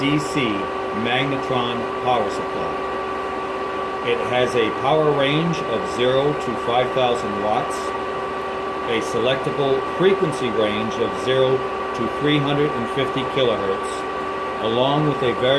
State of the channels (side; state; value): both; identical; correlation 1.00